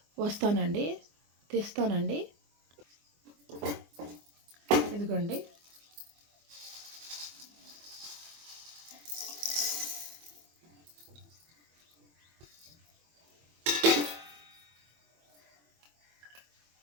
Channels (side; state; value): left; late; 24 ms